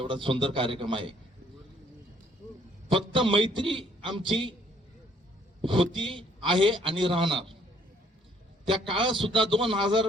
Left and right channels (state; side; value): normal; both; correlation 0.63